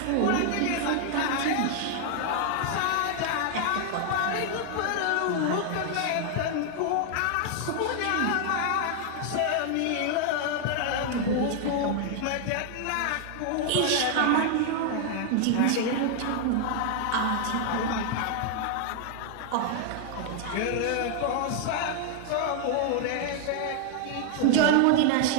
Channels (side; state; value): both; different; correlation 0.00